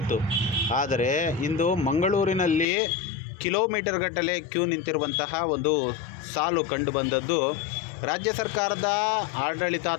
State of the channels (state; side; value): drops out; right; at 2.7 s